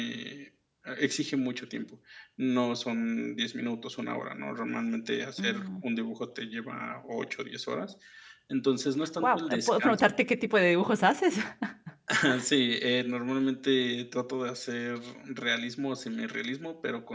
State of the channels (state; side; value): identical; both; correlation 1.00